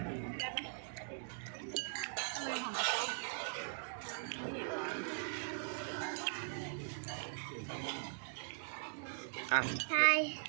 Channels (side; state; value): left; silent; digital silence